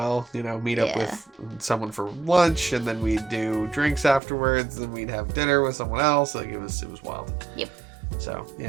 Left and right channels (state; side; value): drops out; left; at 4.2 s